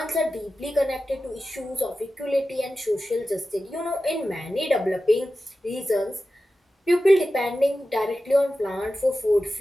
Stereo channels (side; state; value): both; normal; correlation 0.93